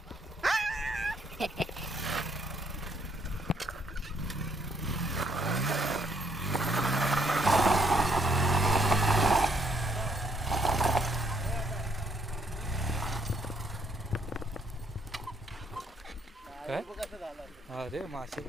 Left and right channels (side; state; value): both; normal; correlation 0.70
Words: काय अरे मासे